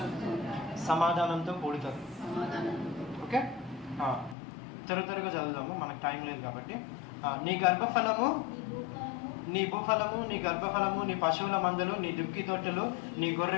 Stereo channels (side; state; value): right; drops out; at 4.4 s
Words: సమాధానంతో కూడుతుంది. ఓకే. త్వరగా చదువుదాము, మనకు టైం లేదు కాబట్టి. నీ గర్భఫలము, నీ భూఫలము, నీ గర్భఫలము, నీ పశువుల మందలు, నీ దుక్కి తొట్టులు, నీ